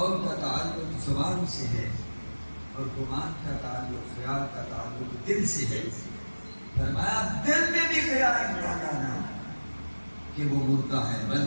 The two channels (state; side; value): inverted; both; correlation -1.00